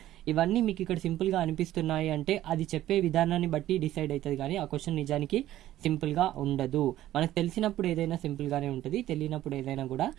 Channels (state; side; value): quieter; left; 13.7 dB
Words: ఇవన్నీ మీకు ఇక్కడ సింపుల్గా అనిపిస్తున్నాయి అంటే అది చెప్పే విధానాన్ని బట్టి డిసైడ్ అవుతుంది, కానీ ఆ క్వశ్చన్ నిజానికి సింపుల్గా ఉండదు. మనకు తెలిసినప్పుడు ఏదైనా సింపుల్గానే ఉంటుంది, తెలియనప్పుడు ఏదైనా కూడా